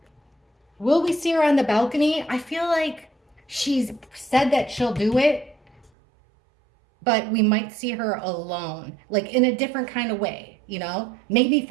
Will we see her on the balcony? I feel like she's said that she'll do it, but we might see her alone, like in a different kind of way, maybe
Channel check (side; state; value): left; drops out; at 5.9 s